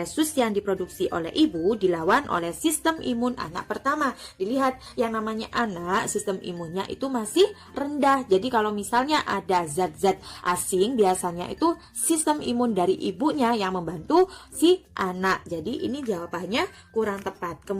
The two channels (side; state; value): both; identical; correlation 1.00